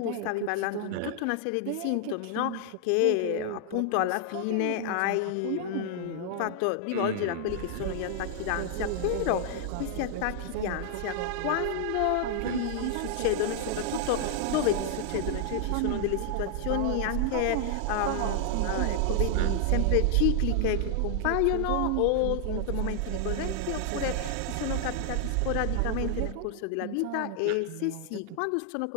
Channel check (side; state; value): both; different; correlation 0.00